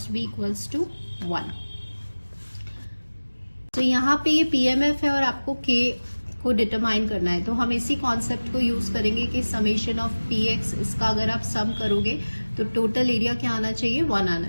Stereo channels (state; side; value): inverted; both; correlation -1.00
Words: be equals to 1। तो यहाँ पे ये PMF है और आपको k को डिटरमाइन करना है। तो हम इसी कॉन्सेप्ट को यूज करेंगे कि समेशन ऑफ px, इसका अगर आप सम करोगे तो टोटल एरिया क्या आना चाहिए, 1